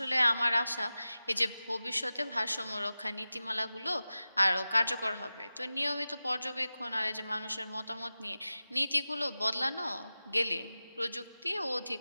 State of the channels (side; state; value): both; inverted; correlation -0.95